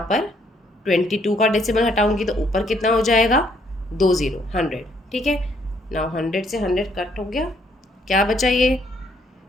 पर 22 का डेसिमल हटाऊंगी तो ऊपर कितना हो जाएगा, 2 0, 100। ठीक है, नाउ 100 से 100 कट हो गया, क्या बचा ये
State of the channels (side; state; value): both; normal; correlation 0.68